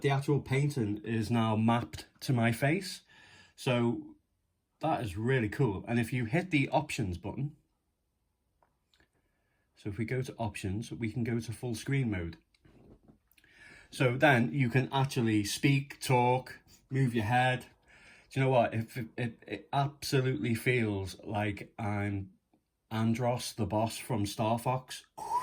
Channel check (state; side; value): identical; both; correlation 1.00